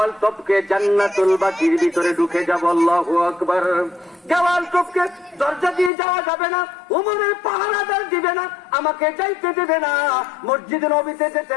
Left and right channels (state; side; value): drops out; right; at 5.9 s